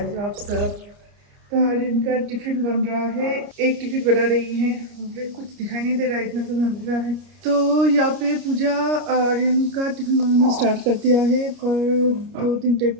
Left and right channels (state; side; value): late; left; 29 ms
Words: हो आप सब। तो आर्यन का टिफिन बन रहा है, एक टिफिन बना रही है। मुझे कुछ दिखाई नहीं दे रहा है, इतना तो अंधेरा है। तो यहाँ पे पूजा आर्यन का टिफिन बनाना स्टार्ट कर दिया है, पर 2-3 टाइप